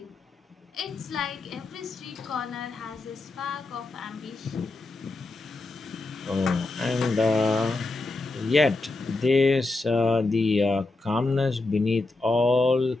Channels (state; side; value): quieter; right; 3.2 dB